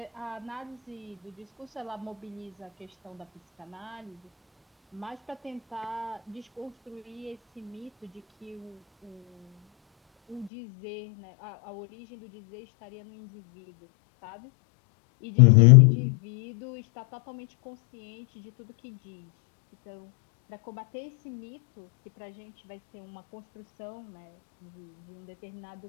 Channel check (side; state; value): right; drops out; at 10.5 s